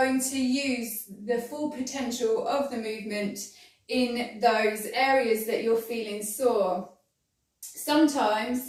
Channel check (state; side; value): identical; both; correlation 1.00